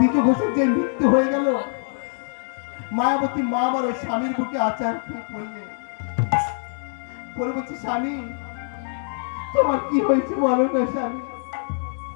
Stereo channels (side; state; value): right; silent; digital silence